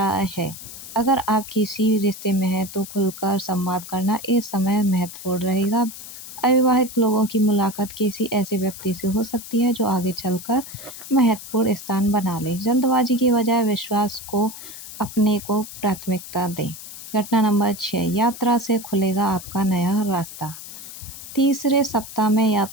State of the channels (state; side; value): noise; left; hiss, 13 dB below the sound